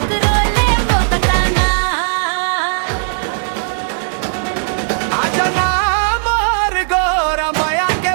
ले वो बताना। आजा ना मोर गोरा माया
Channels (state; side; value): silent; left; 69 dB below the other